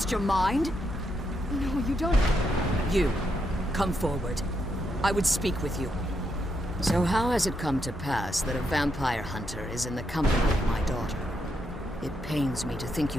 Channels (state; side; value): normal; both; correlation 0.80